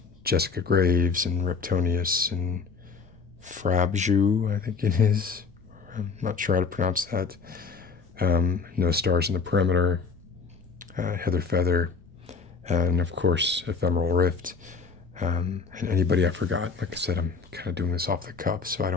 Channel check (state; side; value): quieter; right; 5.2 dB